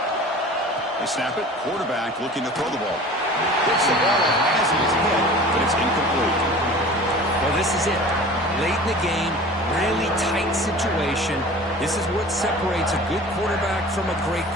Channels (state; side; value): normal; both; correlation 0.41